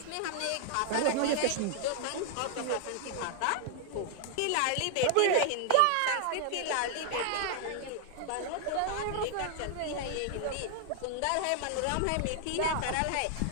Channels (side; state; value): both; different; correlation 0.00